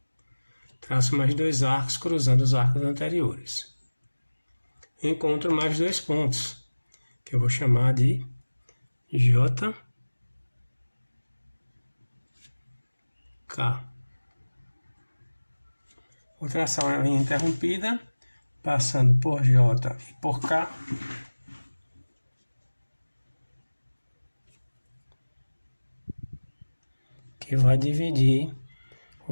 traço mais 2 arcos cruzando os arcos anteriores. Encontro mais 2 pontos, que eu vou chamar de J, K. Vou traçar uma linha interrompida, passando por J e por K. que vai dividir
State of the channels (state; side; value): inverted; both; correlation -1.00